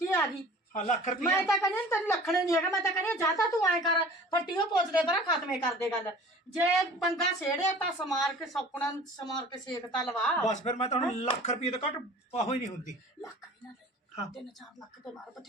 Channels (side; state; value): both; normal; correlation 0.45